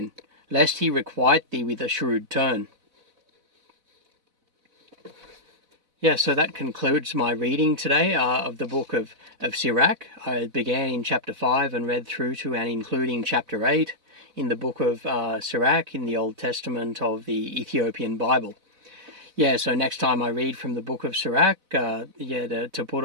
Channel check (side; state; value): left; late; 4.0 ms